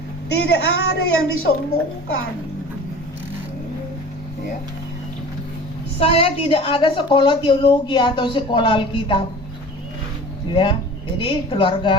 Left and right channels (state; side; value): normal; both; correlation 0.40